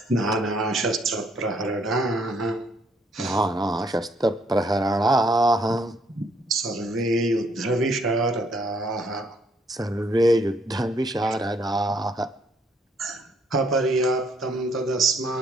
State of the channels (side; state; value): both; normal; correlation 0.68